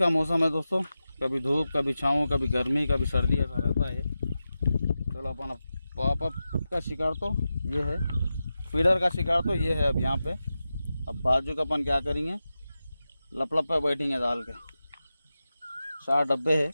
मौसम है दोस्तों, कभी धूप, कभी छाँव, कभी गर्मी, कभी सर्दी, ऐसा रहता है। चलो अपन पॉपअप का शिकार तो ये है, फीडर का शिकार तो ये है। अब यहाँ पे अब बाजू का अपन क्या करेंगे, लपलप पे बैठेंगे डाल के। 4 डब्बे है।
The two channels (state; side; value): inverted; both; correlation -0.92